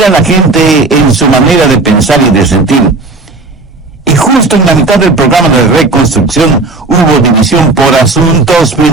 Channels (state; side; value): quieter; left; 3.4 dB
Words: a la gente en su manera de pensar y de sentir. Y justo en la mitad del programa de reconstrucción hubo división por asuntos